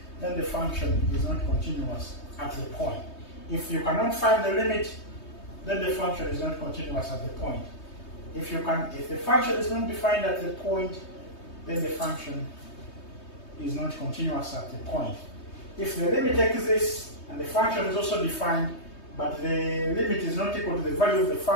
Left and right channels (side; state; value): right; late; 3.2 ms